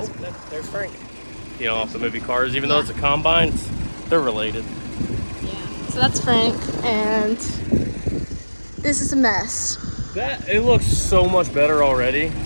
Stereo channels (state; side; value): inverted; both; correlation -1.00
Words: Oh, there's Frank. You know, off the movie Cars, even though it's a combine, they're related. Yeah. So that's Frank, and this is a mess. It looks so much better already,